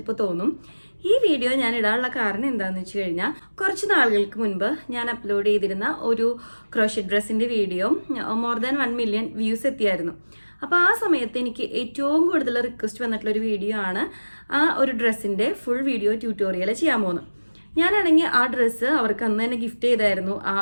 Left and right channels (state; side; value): inverted; both; correlation -1.00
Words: തോന്നും. ഈ വീഡിയോ ഞാൻ ഇടാനുള്ള കാരണം എന്താണെന്ന് വെച്ച് കഴിഞ്ഞാൽ കുറച്ച് നാളുകൾക്ക് മുൻപ് ഞാൻ അപ്ലോഡ് ചെയ്തിരുന്ന ഒരു ക്രോഷറ്റ് ഡ്രസ്സിൻ്റെ video more than 1 million views എത്തിയായിരുന്നു. അപ്പോൾ ആ സമയത്ത് എനിക്ക് ഏറ്റവും കൂടുതൽ റിക്വസ്റ്റ് വന്നിട്ടുള്ളൊരു വീഡിയോ ആണ് ആ ഒരു ഡ്രസ്സിൻ്റെ ഫുൾ വീഡിയോ ട്യൂട്ടോറിയൽ ചെയ്യാൻ പോകുന്നത്. ഞാനാണെങ്കിൽ ആ ഡ്രസ്സ് അവർക്ക് അന്ന് തന്നെ ഗിഫ്റ്റ് ചെയ്തായിരുന്നു ആ